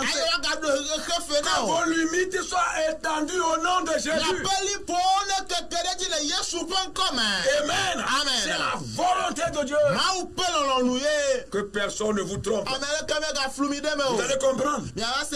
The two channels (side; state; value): both; identical; correlation 1.00